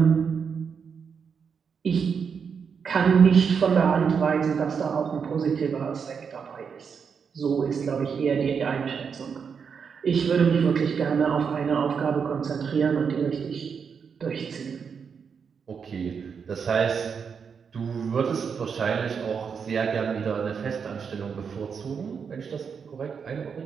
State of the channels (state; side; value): quieter; left; 6.4 dB